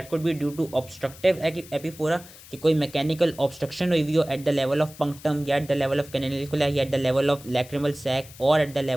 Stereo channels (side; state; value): left; noise; hiss, 19 dB below the sound